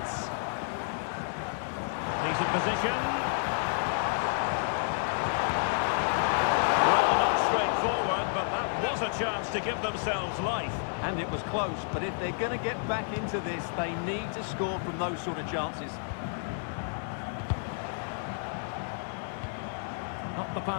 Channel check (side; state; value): right; silent; 57 dB below the other